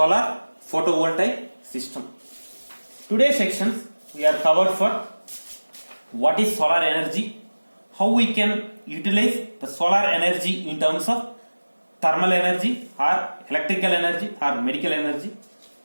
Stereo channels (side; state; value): both; inverted; correlation -1.00